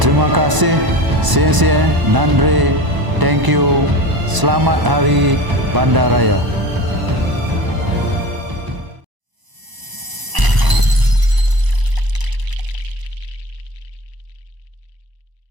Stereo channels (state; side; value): late; left; 1.0 ms